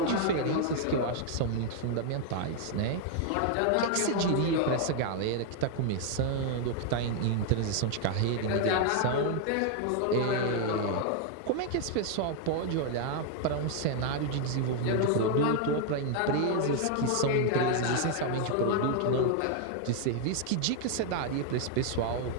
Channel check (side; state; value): both; different; correlation 0.00